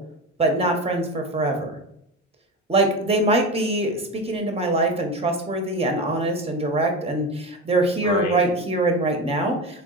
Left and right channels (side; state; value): both; normal; correlation 0.22